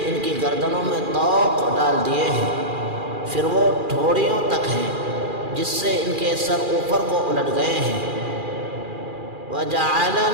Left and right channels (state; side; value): late; left; 2.4 ms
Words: ان کی گردنوں میں طوق ڈال دیے ہیں، پھر وہ ٹھوڑیوں تک ہیں جس سے ان کے سر اوپر کو الٹ گئے ہیں۔